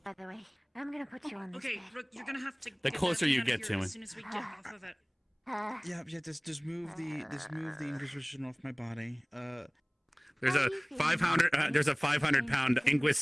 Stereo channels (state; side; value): identical; both; correlation 1.00